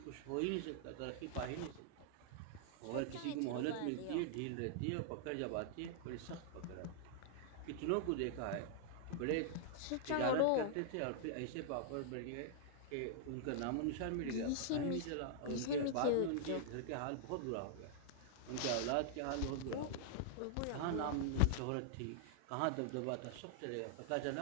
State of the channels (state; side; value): different; both; correlation -0.01